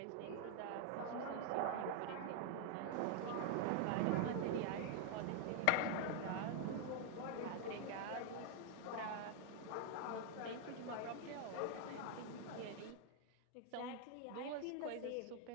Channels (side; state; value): both; different; correlation 0.00